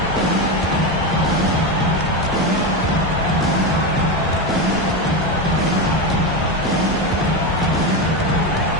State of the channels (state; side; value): normal; both; correlation 0.14